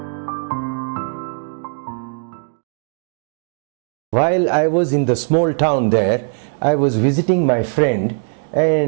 While I was in the small town there, I was visiting my friend,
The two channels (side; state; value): left; silent; digital silence